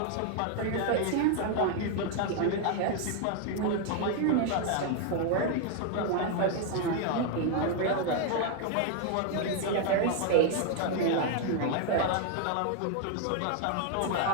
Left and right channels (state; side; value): different; both; correlation 0.00